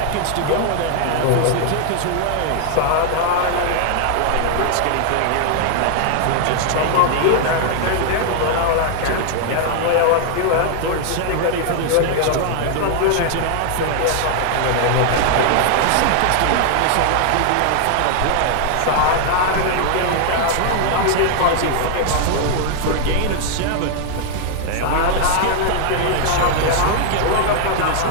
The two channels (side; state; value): both; different; correlation 0.00